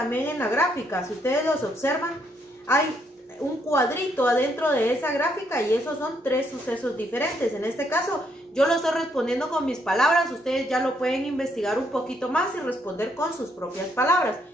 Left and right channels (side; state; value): both; normal; correlation 0.73